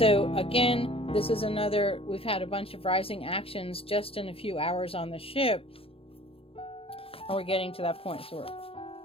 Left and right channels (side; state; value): right; late; 0.27 ms